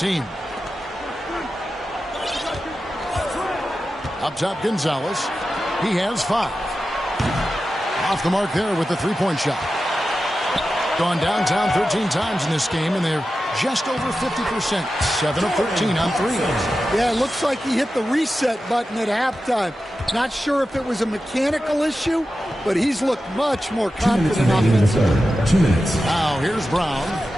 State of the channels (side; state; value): both; normal; correlation 0.92